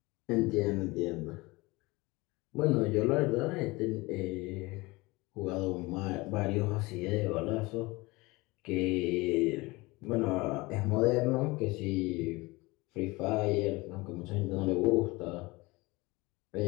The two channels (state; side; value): quieter; right; 22.9 dB